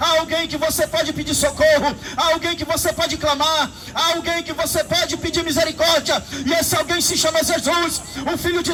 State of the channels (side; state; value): both; identical; correlation 1.00